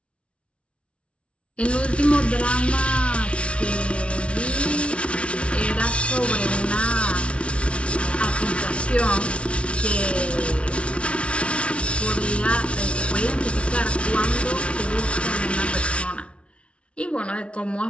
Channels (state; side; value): late; right; 0.060 ms